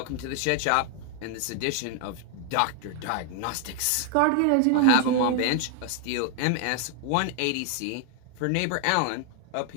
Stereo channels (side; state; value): both; different; correlation 0.00